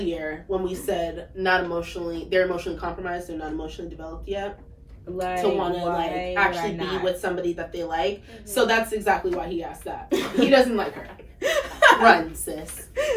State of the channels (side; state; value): both; identical; correlation 1.00